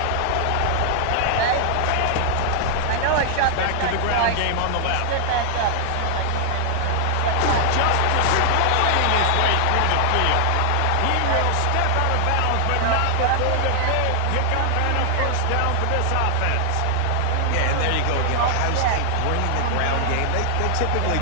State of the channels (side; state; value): both; different; correlation 0.00